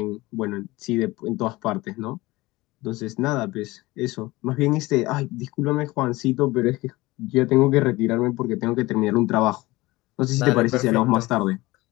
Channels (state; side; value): quieter; right; 20.3 dB